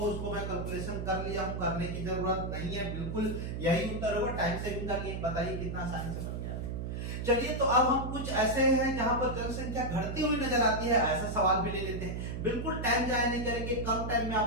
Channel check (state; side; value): noise; right; hum, 4 dB below the sound